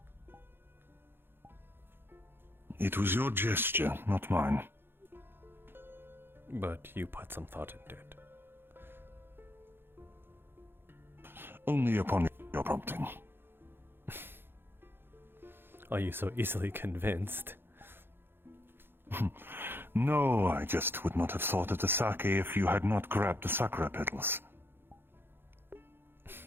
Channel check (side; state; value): left; late; 0.10 ms